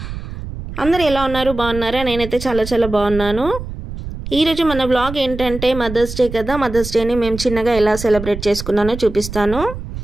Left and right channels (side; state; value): right; noise; rumble, 9 dB below the sound